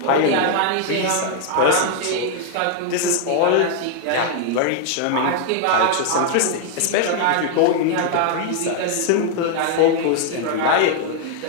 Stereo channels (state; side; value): different; both; correlation 0.00